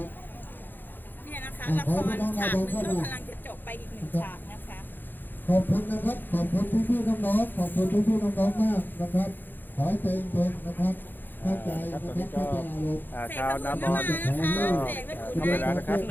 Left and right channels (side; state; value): right; late; 0.092 ms